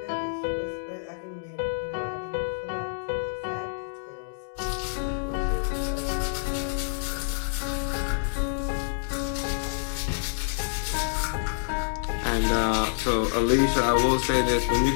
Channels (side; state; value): right; silent; digital silence